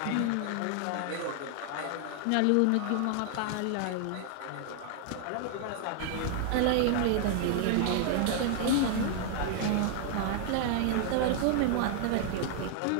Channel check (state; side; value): different; both; correlation 0.00